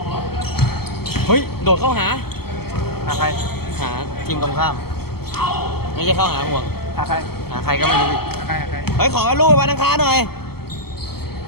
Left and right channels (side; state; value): right; late; 0.95 ms